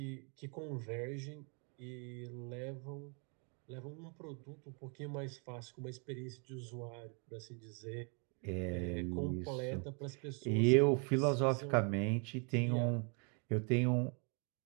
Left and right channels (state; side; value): quieter; left; 37.2 dB